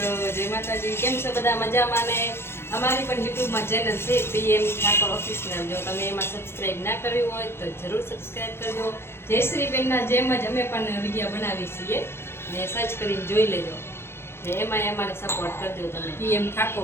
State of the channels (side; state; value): right; late; 0.12 ms